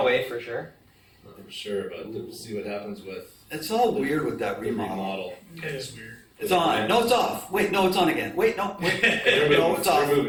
for sure? Not for sure, but we'll see what happens with It's all weird with that the remodel. remodel. It is weird. It's on. No, it's off. Wait, no, it's on again. Wait, no, wait. They're No, moving, it's off. they're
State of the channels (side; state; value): both; identical; correlation 1.00